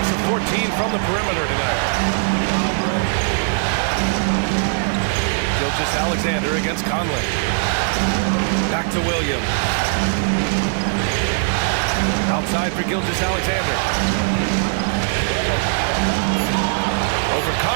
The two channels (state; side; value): silent; left; digital silence